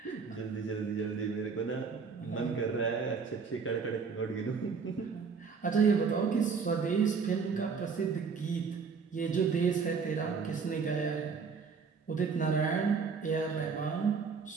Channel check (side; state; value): left; quieter; 5.5 dB